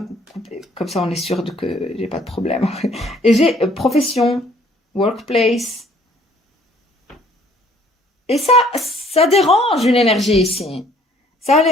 couper, comme ça on est sûr que j'ai pas de problème. Et j'ai profession, workplace. Et ça dérange une énergie ici. Ça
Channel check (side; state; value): both; normal; correlation 0.59